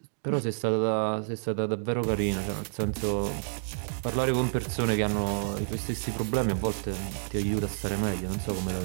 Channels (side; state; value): left; silent; digital silence